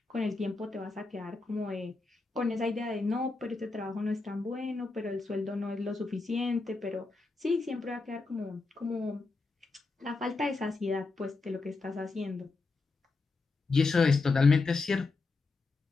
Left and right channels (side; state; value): right; quieter; 3.8 dB